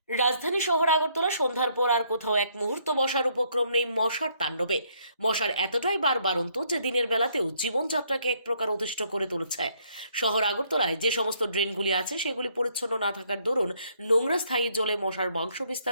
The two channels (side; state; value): both; inverted; correlation -0.68